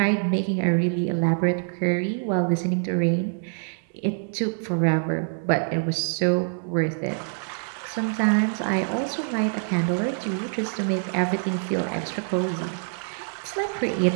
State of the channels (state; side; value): silent; left; digital silence